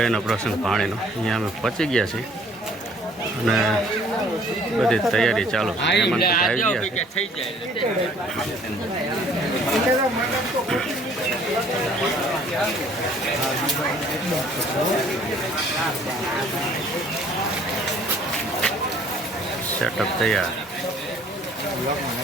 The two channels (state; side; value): normal; both; correlation 0.57